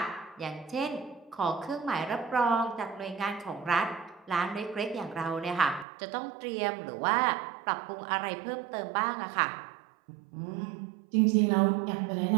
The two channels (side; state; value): left; drops out; at 5.9 s